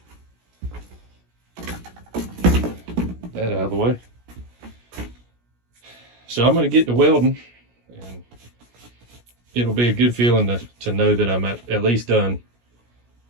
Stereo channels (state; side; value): late; left; 17 ms